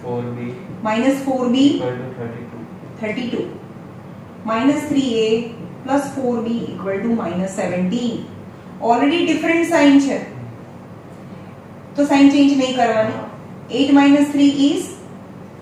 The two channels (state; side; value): identical; both; correlation 1.00